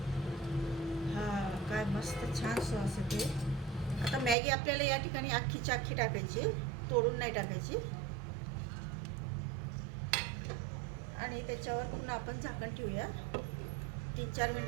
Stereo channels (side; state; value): left; drops out; at 4.4 s